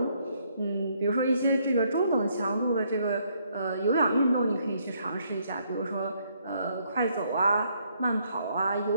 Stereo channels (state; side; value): inverted; both; correlation -0.70